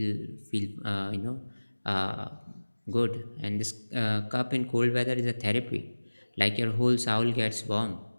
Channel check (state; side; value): inverted; both; correlation -1.00